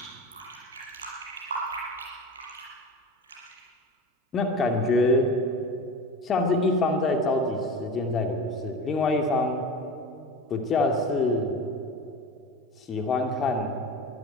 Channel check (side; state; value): both; normal; correlation 0.31